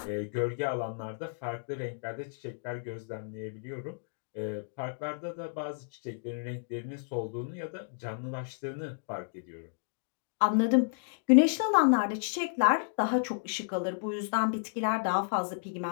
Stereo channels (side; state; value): right; silent; digital silence